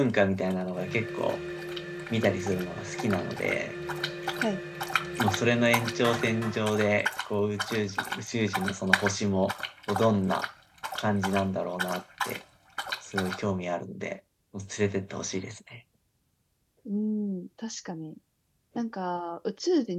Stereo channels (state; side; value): identical; both; correlation 1.00